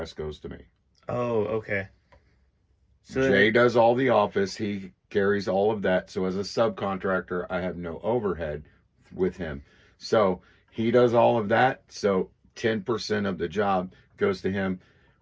goes to me. Oh, okay. So Jay does all the office. He carries all of that. So as a subcontractor, I have no overhead with him. So he does all of that. So 10% of the job goes to him,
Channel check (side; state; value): both; identical; correlation 1.00